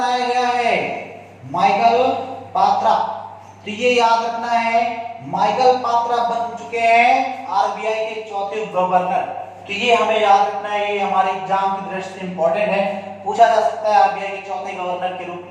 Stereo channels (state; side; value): identical; both; correlation 1.00